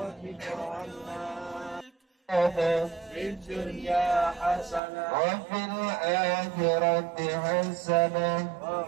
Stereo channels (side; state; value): left; drops out; at 4.8 s